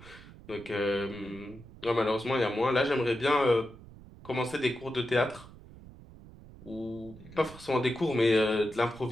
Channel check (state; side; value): noise; right; rumble, 19 dB below the sound